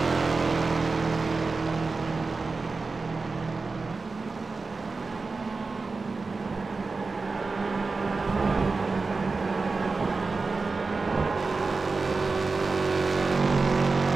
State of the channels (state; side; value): quieter; left; 4.1 dB